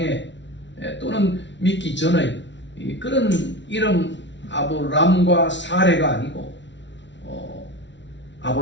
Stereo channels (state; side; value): late; right; 0.52 ms